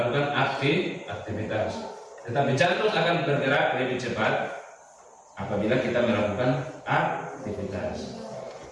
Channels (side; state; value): both; identical; correlation 1.00